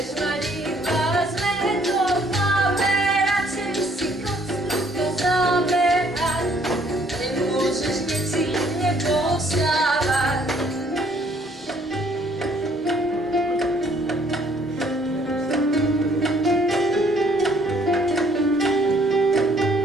mať iba zmeto v hlave. Radšej si kocku zabehať, nemôžeš necítne postávať.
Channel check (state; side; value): normal; both; correlation 0.63